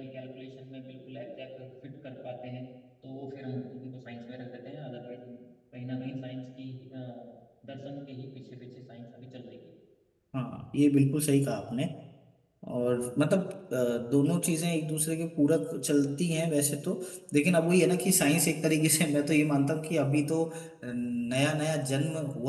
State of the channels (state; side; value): identical; both; correlation 1.00